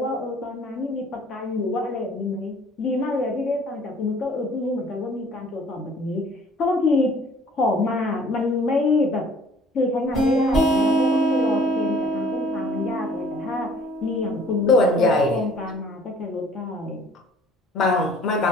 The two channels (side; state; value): both; normal; correlation 0.54